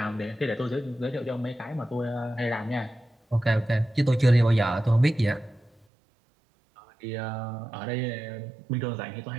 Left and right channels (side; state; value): left; drops out; at 5.9 s